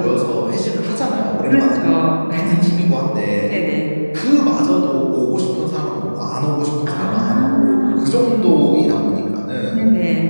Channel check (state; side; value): inverted; both; correlation -1.00